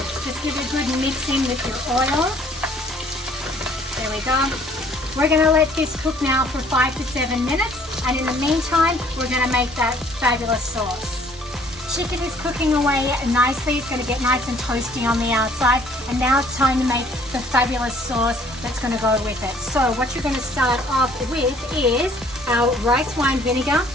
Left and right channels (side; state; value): both; normal; correlation 0.58